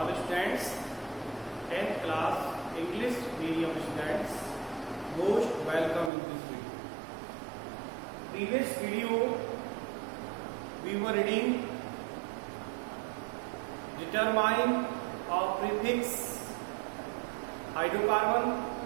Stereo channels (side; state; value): left; drops out; at 6.1 s